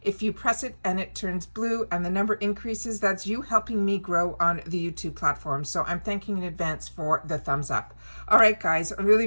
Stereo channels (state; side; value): inverted; both; correlation -1.00